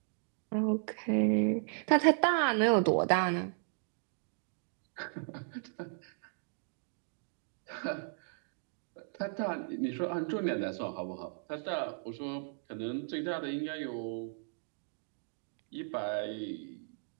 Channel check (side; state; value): left; silent; digital silence